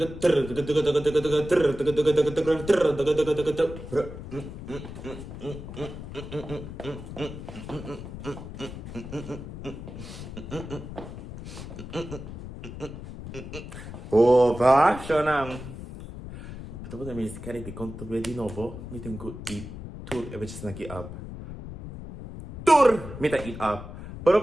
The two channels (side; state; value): left; noise; rumble, 11 dB below the sound